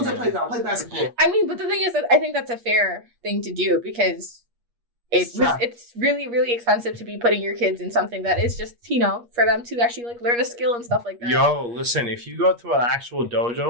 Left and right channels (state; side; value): late; left; 8.4 ms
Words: to the playground, play basketball. I mean, but the thing is that I think that's a fair thing to do because Yeah. it's really, really expensive to be putting your kids in something that is just, for them to actually like learn a skill and stuff like that. Yo, listen, if you go to an actual